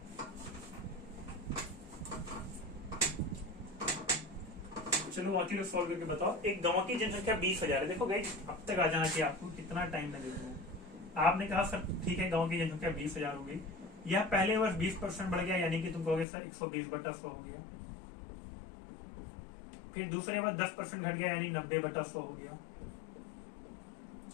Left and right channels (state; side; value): drops out; right; at 16.2 s